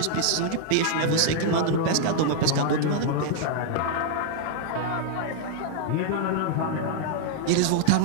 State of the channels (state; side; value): different; both; correlation 0.00